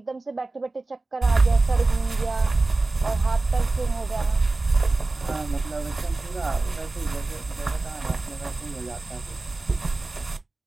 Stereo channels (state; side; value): quieter; left; 3.2 dB